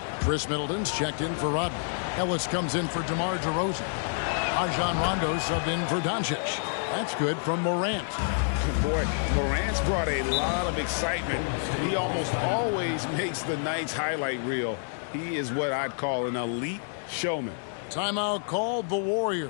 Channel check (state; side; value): silent; right; digital silence